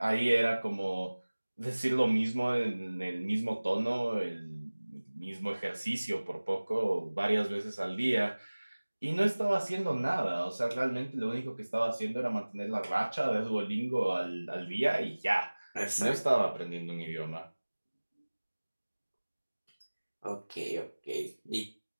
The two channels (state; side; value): inverted; both; correlation -1.00